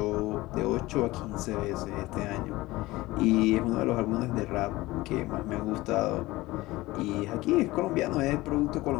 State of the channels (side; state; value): right; quieter; 19.3 dB